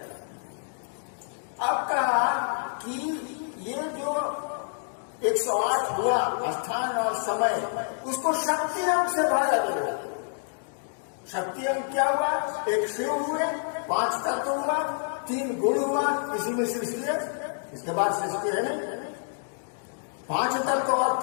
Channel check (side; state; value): right; silent; digital silence